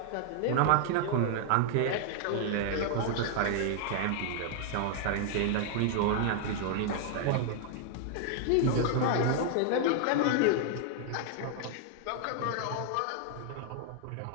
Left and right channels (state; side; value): different; both; correlation 0.00